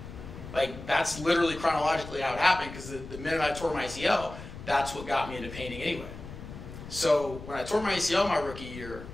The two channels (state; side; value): noise; left; rumble, 12 dB below the sound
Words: Like, that's literally chronologically how it happened, because the minute I tore my ACL, that's what got me into painting anyway. So when I tore my ACL my rookie year,